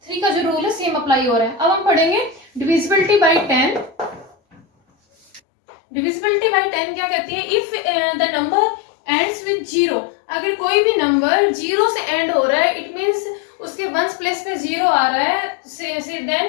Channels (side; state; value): right; drops out; at 5.4 s